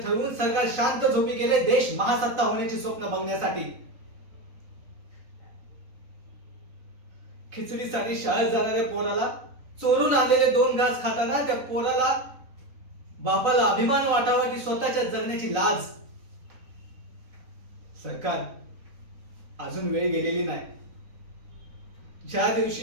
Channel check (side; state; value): left; late; 3.9 ms